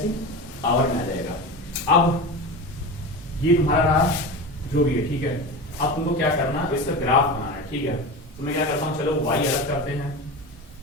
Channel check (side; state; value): both; normal; correlation 0.27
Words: पावर में आ जाएगा। अब ये तुम्हारा रहा जो भी है, ठीक है। अब तुमको क्या करना, इसका ग्राफ बनाना है, ठीक है। तो मैं क्या करता हूँ, चलो y अलग करते हैं,